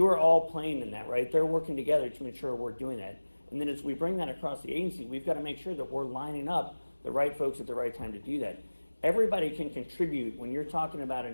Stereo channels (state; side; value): inverted; both; correlation -1.00